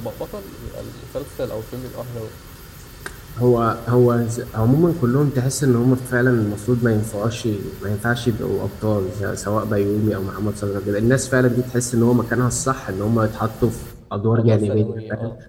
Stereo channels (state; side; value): identical; both; correlation 1.00